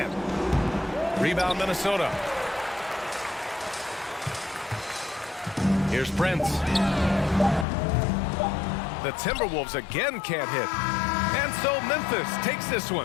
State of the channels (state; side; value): drops out; right; at 7.7 s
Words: Rebound, Minnesota. Here's Prince. The Timberwolves again can't hit. And so Memphis takes this